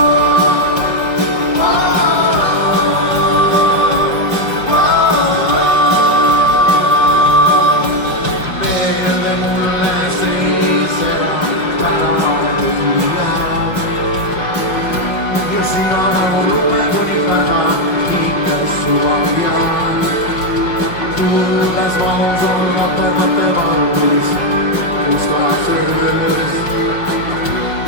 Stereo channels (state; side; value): late; right; 5.7 ms